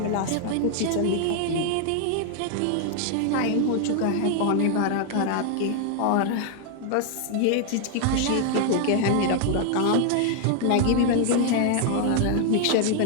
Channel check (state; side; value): different; both; correlation 0.00